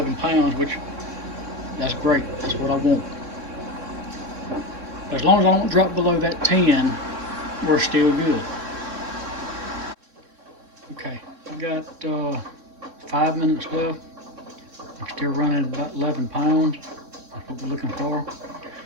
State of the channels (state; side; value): late; left; 3.6 ms